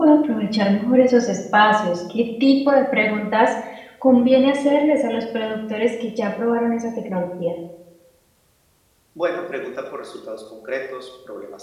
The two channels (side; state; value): both; identical; correlation 1.00